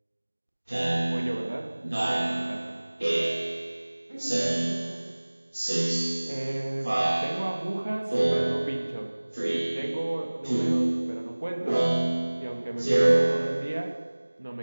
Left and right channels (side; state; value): both; inverted; correlation -1.00